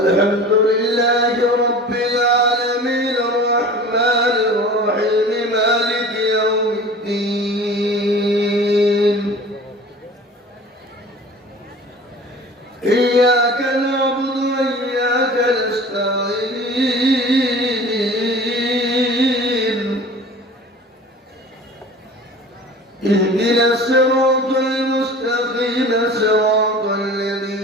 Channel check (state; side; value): normal; both; correlation 0.41